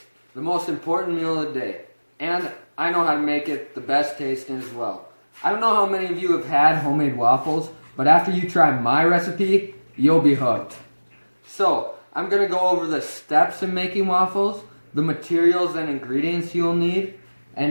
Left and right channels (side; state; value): both; inverted; correlation -1.00